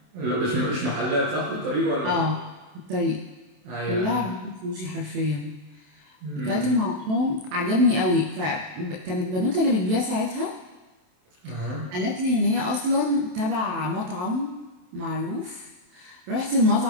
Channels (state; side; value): late; left; 27 ms